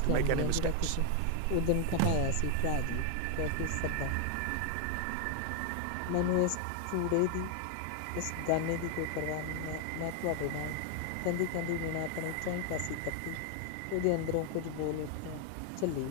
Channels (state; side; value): different; both; correlation 0.00